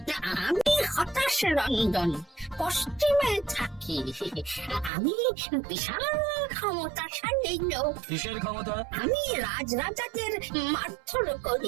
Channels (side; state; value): left; drops out; at 4.9 s